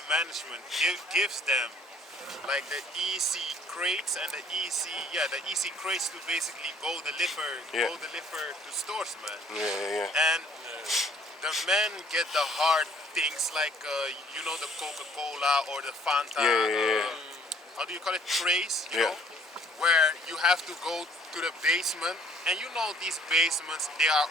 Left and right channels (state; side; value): normal; both; correlation 0.58